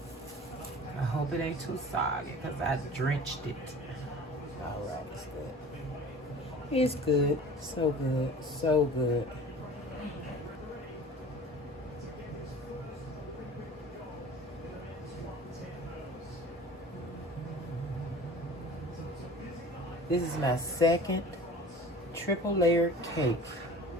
I hope it ain't too soggy because I drenched it. All right, it's good. It's good. So good. So good. This is my second triple layered cake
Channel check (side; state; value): both; normal; correlation 0.42